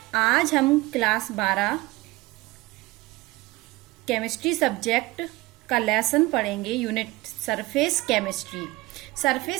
आज हम क्लास 12 केमिस्ट्री सब्जेक्ट का लेसन पढ़ेंगे, unit surface chemistry.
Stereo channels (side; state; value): left; quieter; 20.6 dB